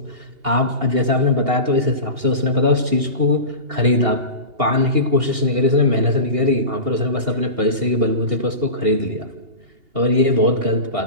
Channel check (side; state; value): left; late; 2.8 ms